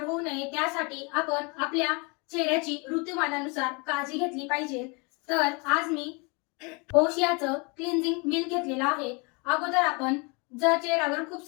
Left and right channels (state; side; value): quieter; right; 30.8 dB